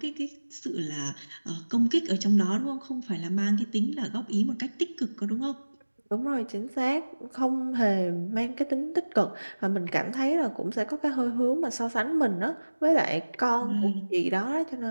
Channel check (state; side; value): inverted; both; correlation -1.00